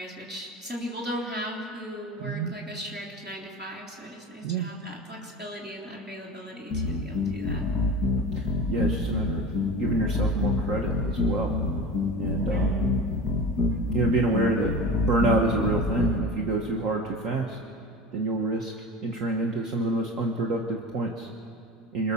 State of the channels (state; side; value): normal; both; correlation 0.32